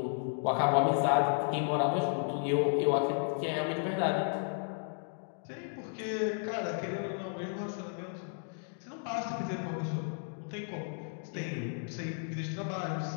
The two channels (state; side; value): silent; right; 55 dB below the other